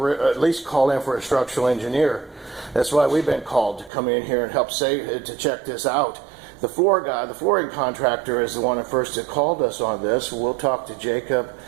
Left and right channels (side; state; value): left; drops out; at 3.9 s